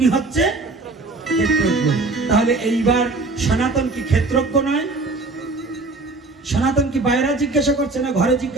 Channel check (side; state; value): left; quieter; 3.4 dB